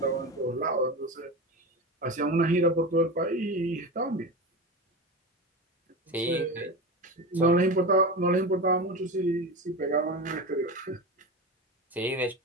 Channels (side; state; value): both; normal; correlation 0.24